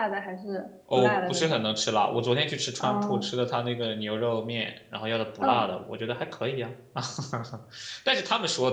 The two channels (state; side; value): identical; both; correlation 1.00